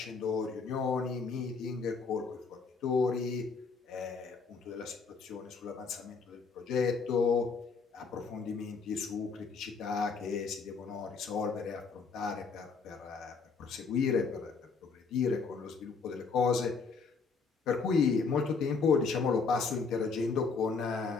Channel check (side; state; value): right; quieter; 4.9 dB